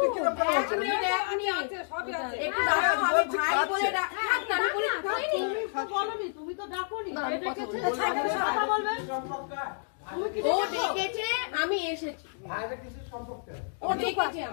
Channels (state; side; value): silent; right; digital silence